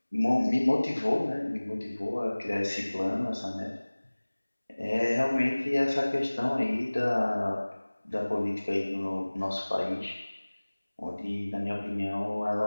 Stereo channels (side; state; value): both; inverted; correlation -1.00